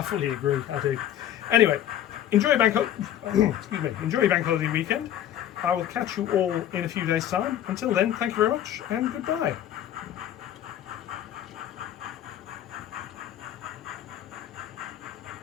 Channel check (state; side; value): quieter; right; 11.2 dB